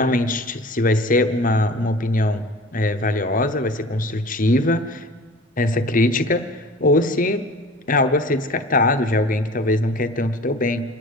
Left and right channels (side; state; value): both; normal; correlation 0.41